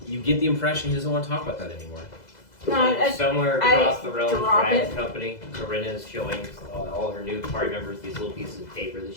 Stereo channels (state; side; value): late; right; 2.0 ms